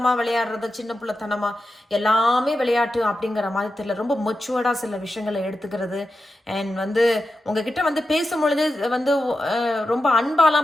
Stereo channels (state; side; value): normal; both; correlation 0.91